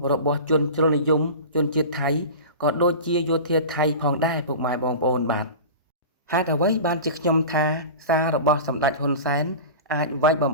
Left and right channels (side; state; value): both; inverted; correlation -0.32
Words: របស់ជនជ្រុលនិយមជនជាតិថៃក៏ដូចជាយោធាថៃផងដែរពុកម៉ែបងប្អូនបាទហេតុអ្វីបានជាខ្ញុំថាសាររបស់សម្ដេចហ៊ុនសែនអាចវាយបំ